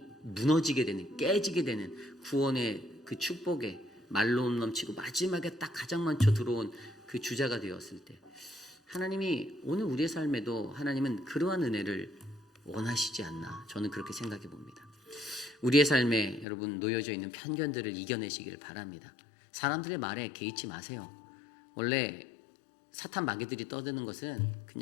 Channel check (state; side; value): drops out; right; at 16.4 s